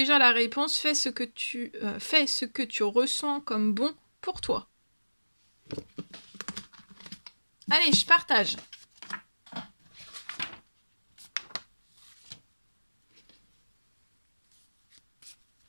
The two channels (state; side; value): inverted; both; correlation -1.00